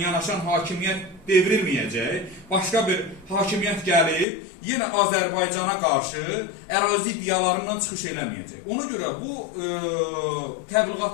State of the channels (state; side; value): drops out; right; at 4.2 s